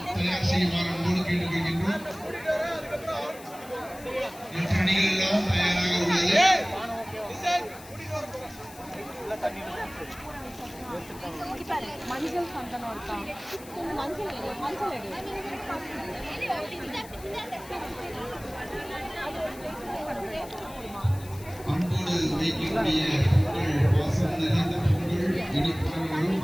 மஞ்சள் சந்தனம் இருக்கா? மஞ்சள்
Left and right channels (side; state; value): left; noise; hiss, 19 dB below the sound